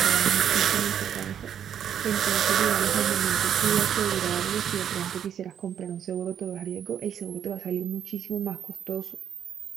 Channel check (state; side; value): quieter; left; 9.1 dB